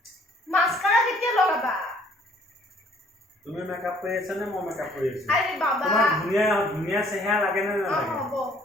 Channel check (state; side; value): normal; both; correlation 0.59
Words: মাস্কাৰা কেতিয়া লগাবা তুমি মেকআপ কৰি আছা নে মই মেকআপ কৰি আছো আৰে বাবা তোমাক ধুনীয়া চেহেৰা লাগে নে নালাগে হ'ব